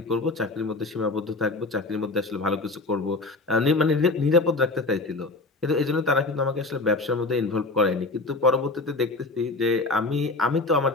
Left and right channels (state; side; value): quieter; right; 3.2 dB